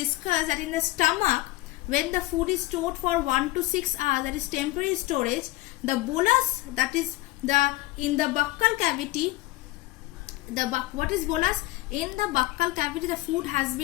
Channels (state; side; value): quieter; right; 19.0 dB